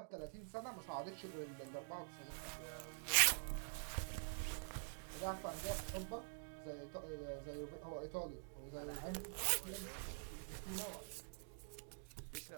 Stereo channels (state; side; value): silent; left; digital silence